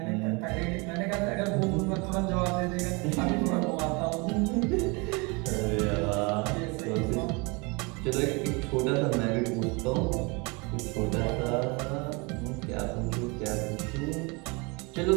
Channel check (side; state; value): left; quieter; 28.6 dB